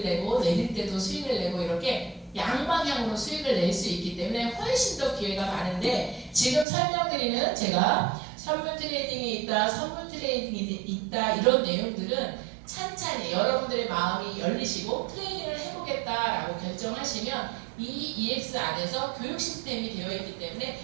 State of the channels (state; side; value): drops out; left; at 6.7 s